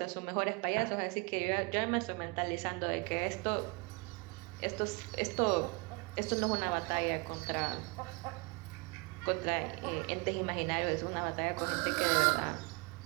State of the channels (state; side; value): quieter; left; 29.1 dB